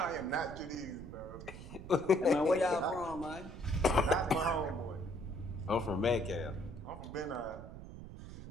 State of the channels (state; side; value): noise; right; rumble, 12 dB below the sound